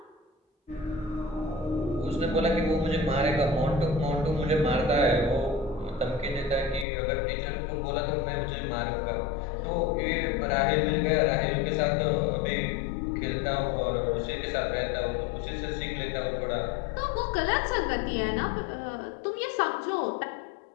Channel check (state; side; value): drops out; right; at 6.9 s